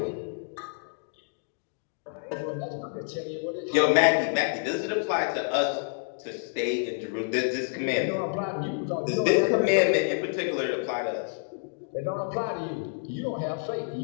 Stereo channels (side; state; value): right; silent; digital silence